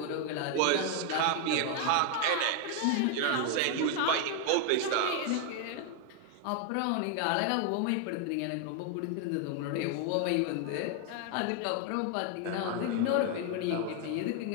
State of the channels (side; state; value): both; different; correlation 0.01